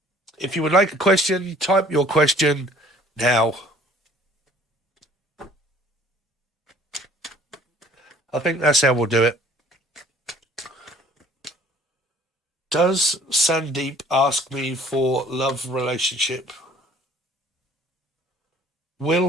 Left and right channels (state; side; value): normal; both; correlation 0.55